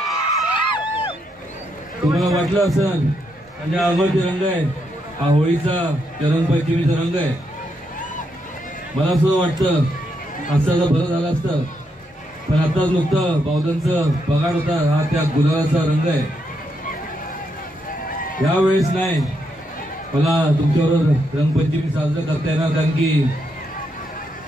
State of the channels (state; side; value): normal; both; correlation 0.79